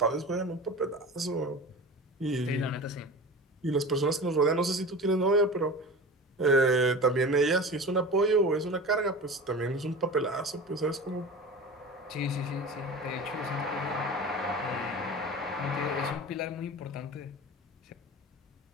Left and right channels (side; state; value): both; normal; correlation 0.33